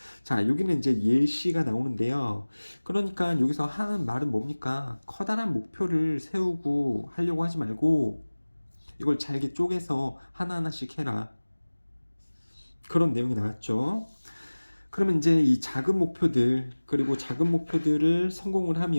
자, 여기는 이제 예시가 나오는데요. 그러니까 여기서 하는 말은 뭡니까? 커다란 목표를 세우고 하려고 하지 말고 이걸 잘게 쪼개서 하나하나씩 해라. 그런 내용이 나왔죠. 그러면 이제 이 작은 목표들, 그리고 작은 목표들을 성공을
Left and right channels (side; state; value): both; inverted; correlation -1.00